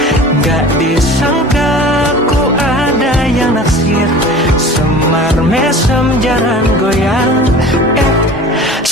gak disangka ku ada yang naksir. Semar mesem jarang goyang,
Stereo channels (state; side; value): normal; both; correlation 0.41